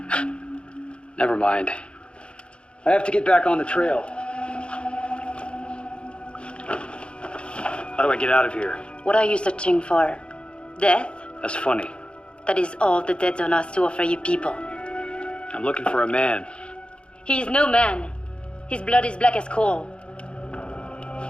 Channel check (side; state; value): right; late; 0.056 ms